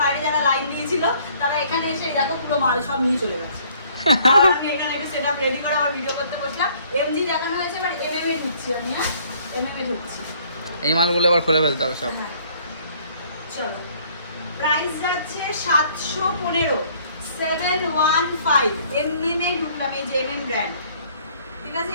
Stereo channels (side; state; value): both; inverted; correlation -0.60